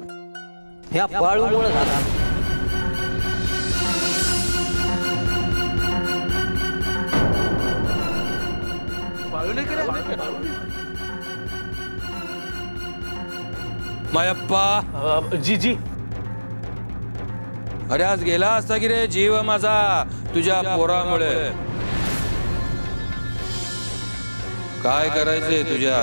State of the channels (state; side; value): inverted; both; correlation -1.00